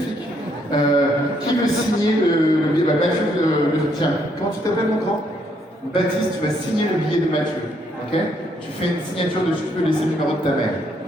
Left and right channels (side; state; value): both; normal; correlation 0.71